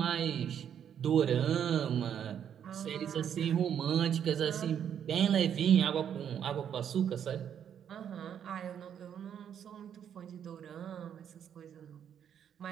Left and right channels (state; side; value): quieter; left; 8.9 dB